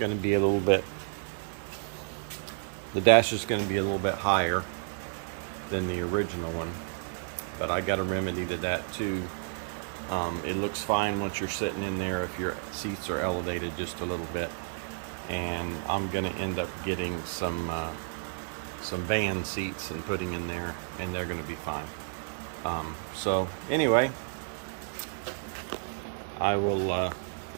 to be a little bit higher than the original one, but I got a remedy to that too. It looks fine once you're sitting in there if your seats are elevated just a little bit. And I'm going to end up getting some van seats and putting in there, and they're going to be fine. So anyway, I'll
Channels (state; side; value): silent; left; digital silence